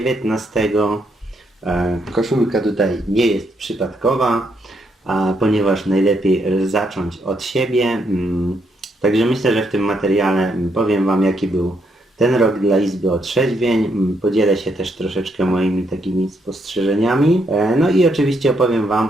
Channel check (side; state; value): both; normal; correlation 0.76